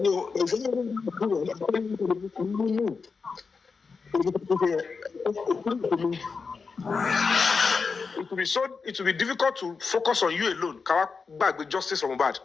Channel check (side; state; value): right; quieter; 4.9 dB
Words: It will be difficult to focus on you alone. Ká gbàgbé justice for Mohbad.